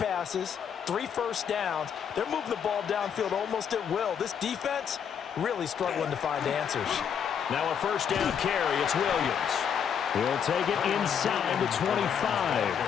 3 first downs. They're moving the ball downfield almost at will. This defense really struggling to find answers. Now a first down carry. It's Williams. He'll take it inside the 25.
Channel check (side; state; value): right; quieter; 7.9 dB